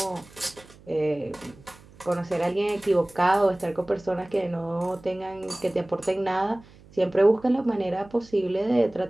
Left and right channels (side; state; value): right; noise; hum, 24 dB below the sound